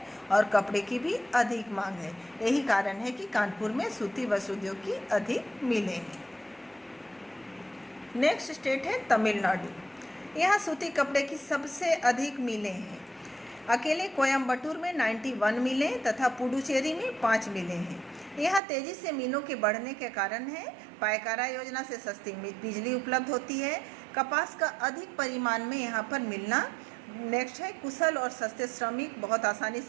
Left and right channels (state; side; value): drops out; left; at 18.6 s